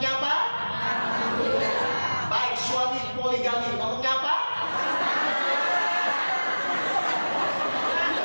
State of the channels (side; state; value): both; inverted; correlation -1.00